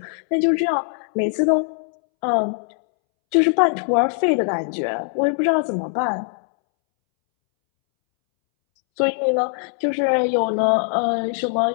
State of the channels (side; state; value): right; silent; 64 dB below the other